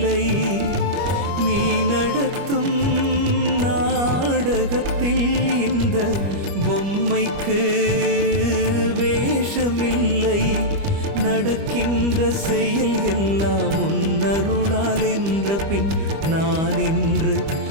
நீ நடத்தும் நாடகத்தில் இந்த பொம்மைக்கு வேஷமில்லை. நடக்கின்ற செயல் எல்லாம் உன்னருளால் என்ற பின் நான் என்று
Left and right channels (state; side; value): late; left; 25 ms